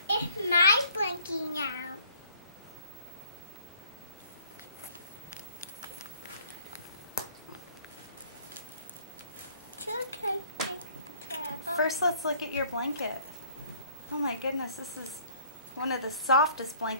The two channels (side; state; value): both; inverted; correlation -0.56